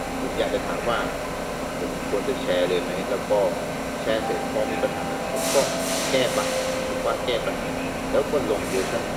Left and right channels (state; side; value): identical; both; correlation 1.00